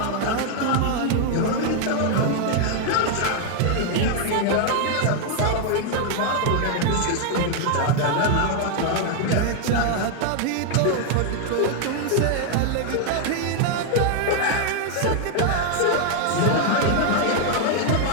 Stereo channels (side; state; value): both; different; correlation 0.00